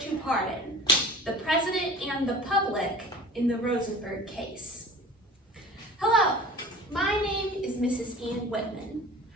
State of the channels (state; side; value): normal; both; correlation 0.40